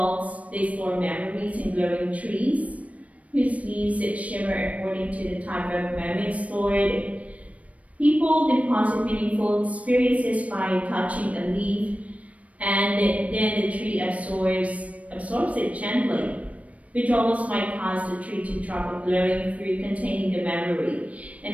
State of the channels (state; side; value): late; left; 0.066 ms